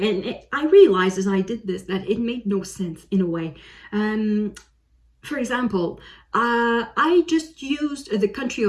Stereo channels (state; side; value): identical; both; correlation 1.00